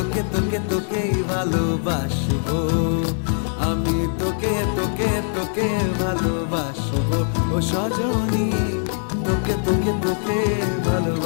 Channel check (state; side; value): silent; right; 64 dB below the other